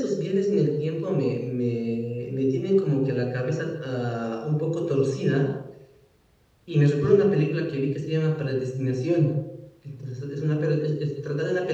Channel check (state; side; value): identical; both; correlation 1.00